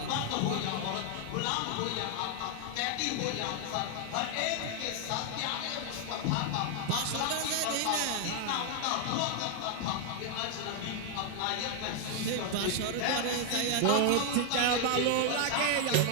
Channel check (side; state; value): both; different; correlation 0.00